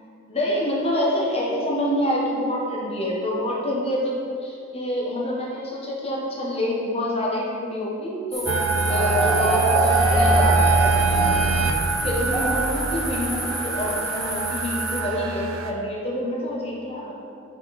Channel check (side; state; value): both; normal; correlation 0.39